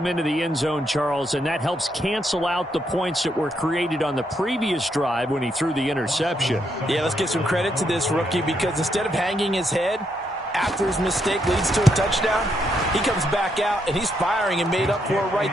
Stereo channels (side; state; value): both; normal; correlation 0.77